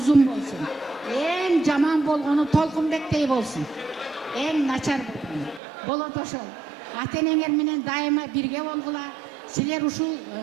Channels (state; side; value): drops out; left; at 5.6 s